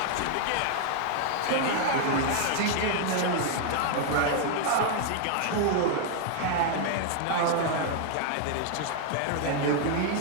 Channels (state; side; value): different; both; correlation 0.00